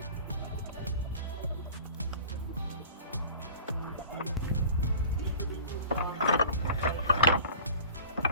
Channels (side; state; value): both; inverted; correlation -0.42